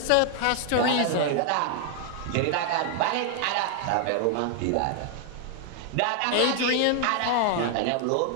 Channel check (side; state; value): both; different; correlation 0.00